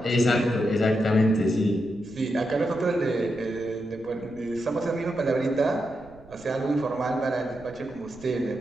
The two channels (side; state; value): right; noise; rumble, 23 dB below the sound